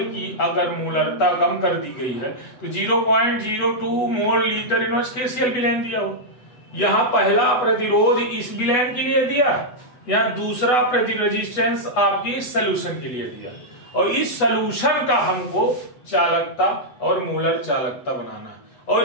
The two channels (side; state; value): right; late; 8.1 ms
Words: की अगर मोलरता कम कर दी गई है तो 0.02 मोल लीटर इनवर्स केसीएल विलयन दिया हो। यहां पहला प्रतिरोध इस विलयन के लिए दिया, यहां दूसरा रेजिस्टेंस आपकी सोल्यूशन के लिए दिया, और इस सोल्यूशन का हमको चालकता और मोलर चालकता बनाना है। और